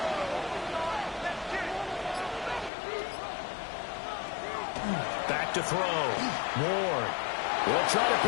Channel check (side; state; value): right; drops out; at 2.7 s